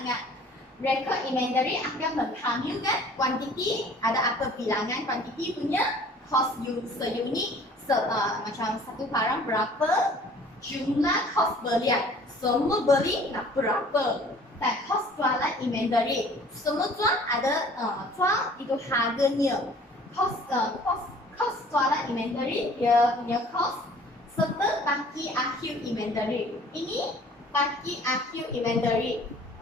Rekod inventory akan menghamilkan kuantiti, ada apa bilangan kuantiti punya, cost seunit, macam satu barang berapa, jumlah kos belian, semua beli nak berapa, dan kos jualan inventory, semua jual ada jual itu harganya, kos jualan inventory dia punya kos, serta baki akhir inventory. Ini baki akhir inventory.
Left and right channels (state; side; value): normal; both; correlation 0.51